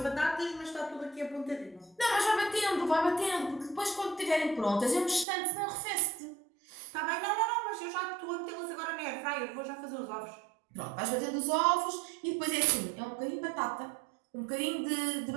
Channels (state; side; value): drops out; left; at 5.2 s